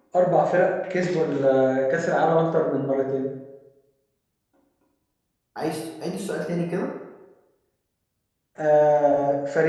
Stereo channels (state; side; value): identical; both; correlation 1.00